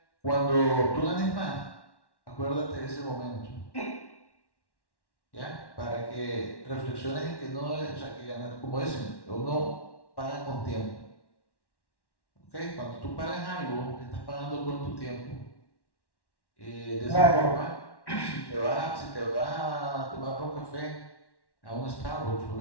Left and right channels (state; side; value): late; right; 1.1 ms